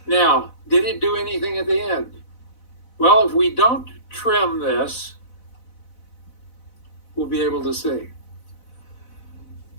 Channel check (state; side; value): late; right; 4.0 ms